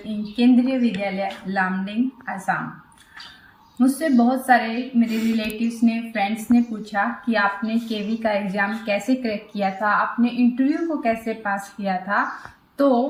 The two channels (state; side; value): identical; both; correlation 1.00